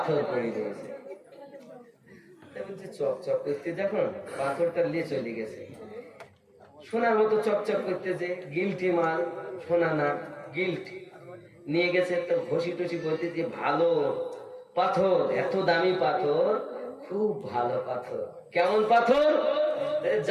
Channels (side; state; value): both; identical; correlation 1.00